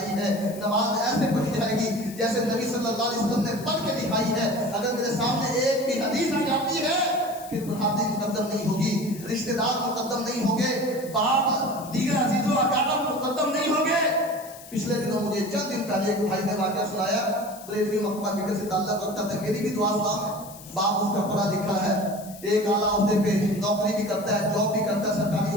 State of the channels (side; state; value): left; noise; hiss, 17 dB below the sound